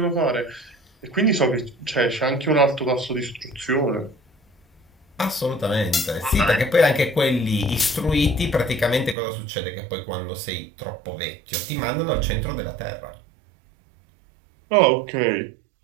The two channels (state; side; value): drops out; left; at 9.2 s